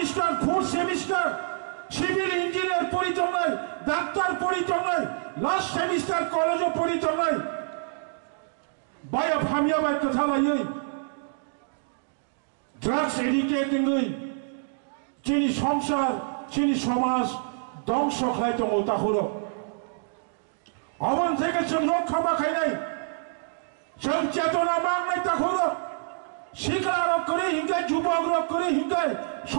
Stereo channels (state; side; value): silent; left; digital silence